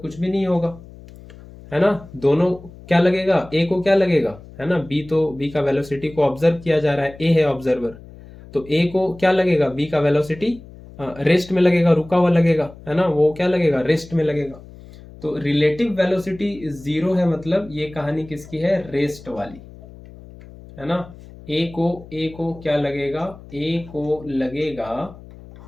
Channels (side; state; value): left; noise; hum, 19 dB below the sound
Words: भी नहीं होगा, है ना। दोनों क्या लगेगा, a को क्या लगेगा, है ना, b का वेलोसिटी को ऑब्जर्व किया जा रहा है, a है ऑब्जर्वर, तो a को क्या लगेगा, b का वेलोसिटी रेस्ट में लगेगा, रुका हुआ लगेगा, है ना, वो क्या लगेगा, रेस्ट में लगेगा। तो रिलेटिव वेलोसिटी 0 है, मतलब ये कहानी किसकी है, रेस्ट वाली, है ना। a को क्या लगेगा, a को लगेगा